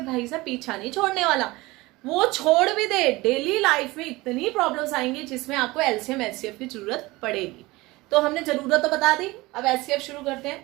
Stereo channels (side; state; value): left; quieter; 21.2 dB